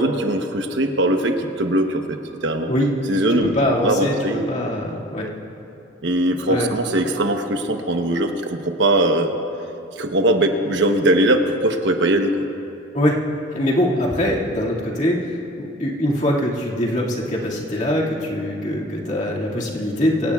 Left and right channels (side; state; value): both; normal; correlation 0.38